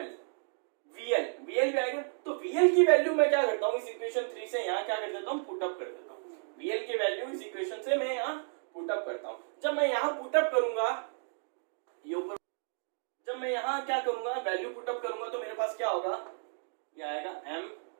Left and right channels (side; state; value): left; silent; digital silence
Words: VL भी आएगा। तो VL की वैल्यू मैं क्या करता हूं, इस इक्वेशन 3 से यहां क्या कर देता हूं? पुटअप कर देता हूं। VL की वैल्यू इस इक्वेशन से मैं यहां पुटअप करता हूं। जब मैं यहां पुटअप करूंगा, ये ऊपर, जब मैं यहां क्या करूंगा, वैल्यू पुटअप करूंगा, तो मेरे पास क्या होगा? ये आएगा m